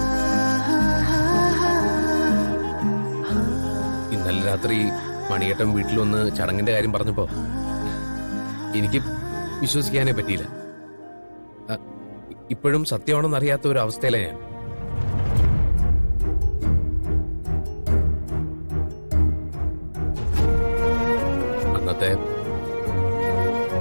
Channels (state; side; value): inverted; both; correlation -1.00